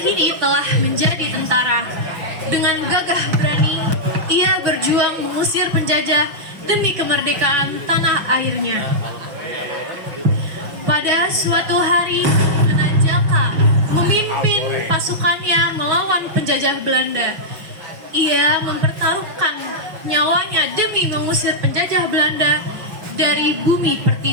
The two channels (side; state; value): left; late; 5.8 ms